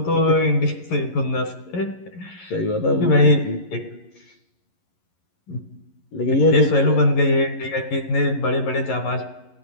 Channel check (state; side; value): late; right; 11 ms